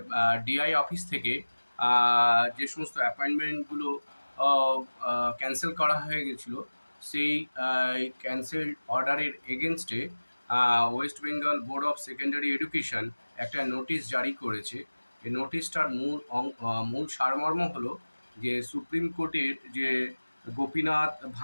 ডিআই অফিস থেকে যে সমস্ত অ্যাপয়েন্টমেন্টগুলো ক্যান্সেল করা হয়ে গেছিল, সেই ক্যান্সেল অর্ডারের এগেনস্টে West Bengal board of secondary education একটা নোটিশ জারি করেছে। এই নোটিশটার মূল সারমর্ম হলো যে সুপ্রিম কোর্টের যে Gopinath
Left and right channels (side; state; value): both; inverted; correlation -1.00